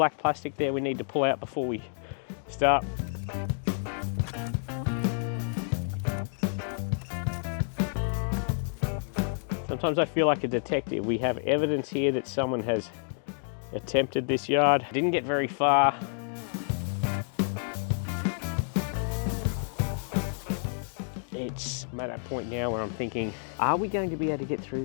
plastic there we need to pull out before we start. Sometimes I feel like a detective. We have evidence here that someone has attempted this yard. Didn't get very far. I'm at that point now where I'm thinking, are we going to be able to get through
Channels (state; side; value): silent; right; 58 dB below the other